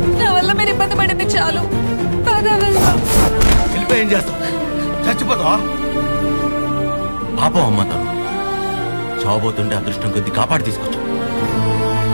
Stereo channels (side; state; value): both; inverted; correlation -1.00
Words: నా వల్ల మీరు ఇబ్బంది పడింది చాలు. వెళ్ళిపోయి ఏం చేస్తావు? చచ్చిపోతావా? పాపం అమ్మ తను చావబోతుంటే అదృష్టం కొద్ది కాపాడి తీసుకొచ్చు.